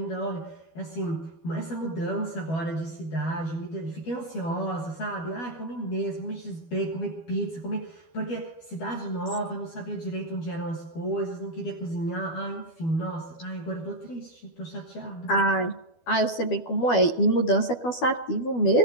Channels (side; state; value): right; late; 12 ms